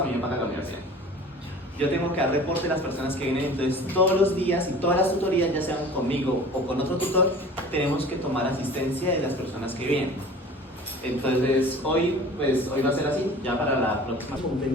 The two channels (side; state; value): both; normal; correlation 0.42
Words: A mí me paga la universidad. Yo tengo que dar reporte de las personas que vienen, entonces todos los días y todas las tutorías, ya sean conmigo o con otro tutor, tenemos que tomar asistencia de las personas que vienen. Entonces hoy va a ser así, ya para la próxima.